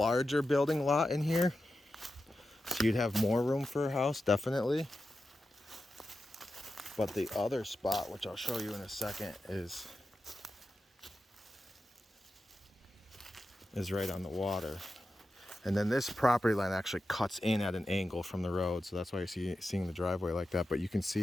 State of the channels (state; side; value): normal; both; correlation 0.91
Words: building lot in here. So you'd have more room for a house, definitely. But the other spot, which I'll show you in a second, is right on the water. And then this property line actually cuts in at an angle from the road. So that's why you're seeing the driveway like that. But you can